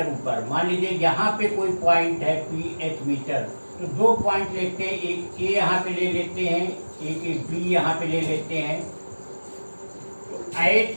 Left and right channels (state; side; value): inverted; both; correlation -1.00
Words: ऊपर, मान लीजिए यहाँ पे कोई पॉइंट है PH मीटर, तो 2 पॉइंट लेते हैं, एक A यहाँ पे ले लेते हैं, एक B यहाँ पे ले लेते हैं। तो